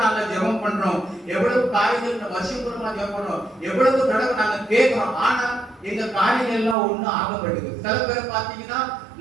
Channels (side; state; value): left; drops out; at 6.8 s